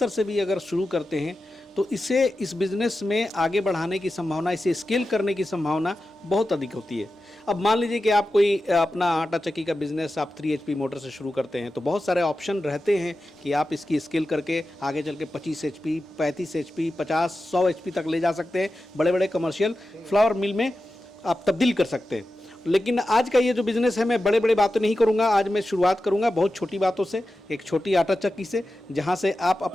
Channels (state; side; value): normal; both; correlation 0.92